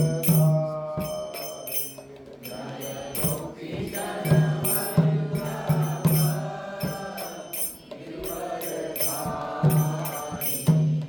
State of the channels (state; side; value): identical; both; correlation 1.00